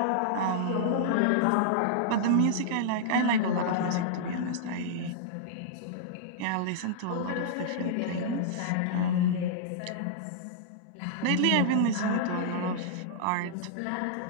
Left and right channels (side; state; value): both; different; correlation -0.02